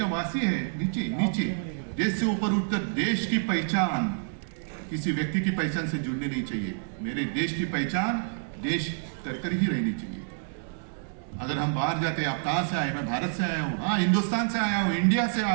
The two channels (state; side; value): silent; left; digital silence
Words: वासी है, नीचे नीचे। देश से ऊपर उठकर देश की पहचान किसी व्यक्ति की पहचान से जुड़नी नहीं चाहिए। मेरे देश की पहचान देश कर ही रहनी चाहिए। अगर हम बाहर जाते, आप कहां से आए? मैं भारत से आया हूं, हाँ हिंदुस्तान से आया हूं, इंडिया से